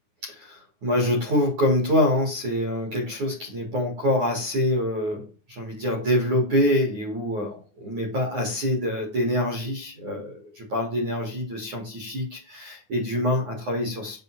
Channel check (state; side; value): late; left; 9.5 ms